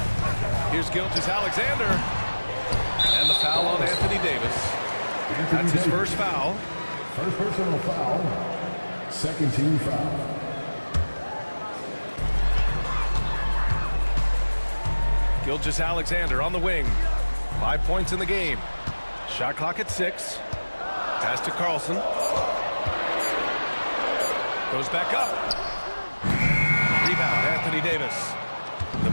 Here's Gilgeous-Alexander. And the foul on Anthony Davis. That's his first foul. First personal foul. Second team foul. Gilgeous-Alexander on the wing. 5 points in the game. Shot clock at 6. Pass to Carlson. Goes back up. Rebound, Anthony Davis. The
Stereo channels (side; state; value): both; inverted; correlation -1.00